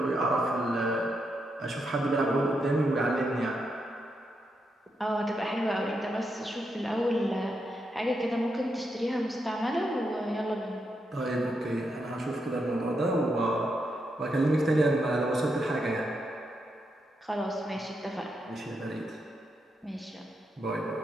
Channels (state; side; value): normal; both; correlation 0.82